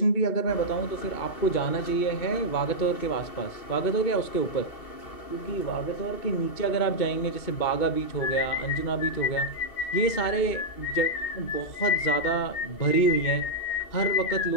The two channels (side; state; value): right; late; 2.7 ms